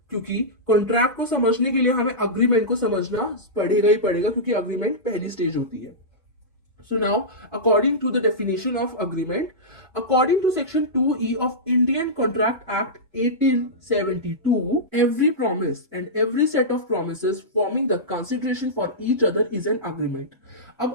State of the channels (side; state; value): both; normal; correlation -0.14